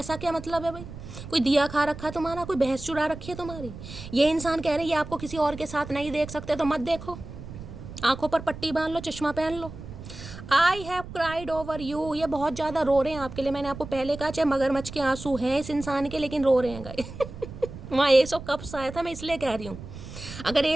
क्या मतलब है भाई, कोई दिया खा रखा है तुम्हारा, कोई भैंस चुरा रखी है तुम्हारी। ये इंसान कह रहे हैं ये आपको किसी और के साथ नहीं देख सकते, तो मत देखो, आंखों पर पट्टी बांध लो, चश्मा पहन लो। I have cried over you, ये बहुत ज़्यादा रो रहे हैं आपके लिए। मैंने आपको पहले कहा चाहे मगरमच्छ के आंसू हैं इस इंसान के, लेकिन रो रहे हैं गाइस वहाँ एस ऑफ कप्स आया था, मैं इसलिए कह रही हूँ। अगर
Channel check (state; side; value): noise; right; rumble, 12 dB below the sound